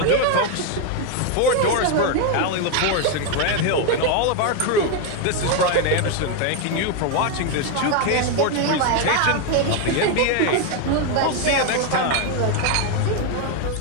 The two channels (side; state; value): both; different; correlation 0.01